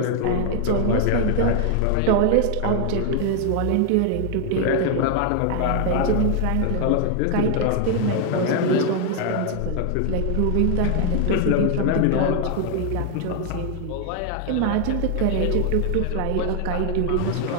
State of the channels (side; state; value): both; different; correlation 0.00